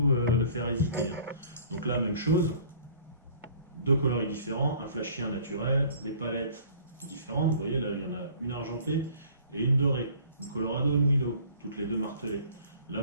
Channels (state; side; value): inverted; both; correlation -0.52